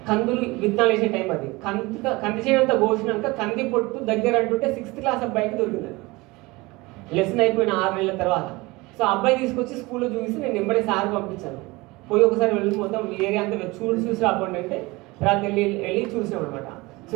కందులు విత్తనాలు వేసే టైం అది. కంది చేయడంతా కోసినాక కంది పొట్టు దగ్గర అంటుంటే 6th క్లాస్ అబ్బాయికి దొరికింది. లెసన్ అయిపోయిన 6 నెలల తర్వాత. సో అబ్బాయి తీసుకొచ్చి స్కూల్లో చూసి నేను వెంబడే సార్ పంపించాను. పోయి ఒకసారి వెళ్ళి మొత్తం ఏరియా అంతా చూసి రాకుండా అంటే తర్వాత వెళ్ళి చూసాం అనమాట. సో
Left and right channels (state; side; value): quieter; left; 22.7 dB